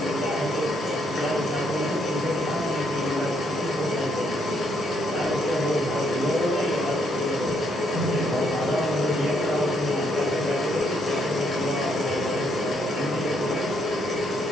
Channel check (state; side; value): normal; both; correlation 0.73